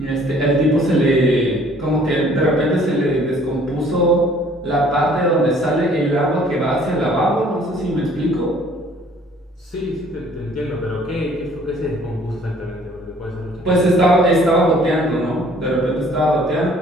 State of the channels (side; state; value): both; normal; correlation 0.56